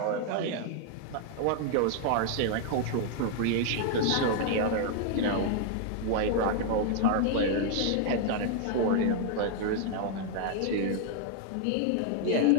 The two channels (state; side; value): different; both; correlation 0.00